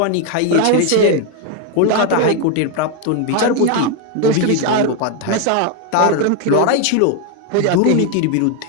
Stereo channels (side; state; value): both; different; correlation 0.01